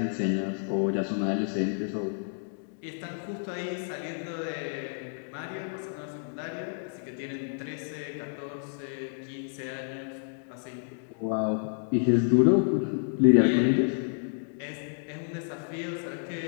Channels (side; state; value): right; silent; digital silence